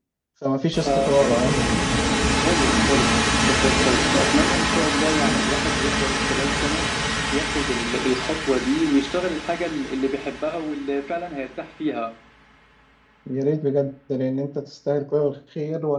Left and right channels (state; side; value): identical; both; correlation 1.00